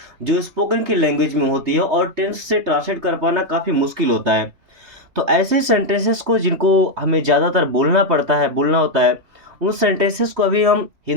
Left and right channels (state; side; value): late; left; 3.2 ms